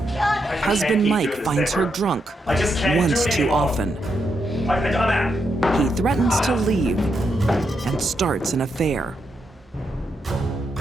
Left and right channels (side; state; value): both; normal; correlation 0.82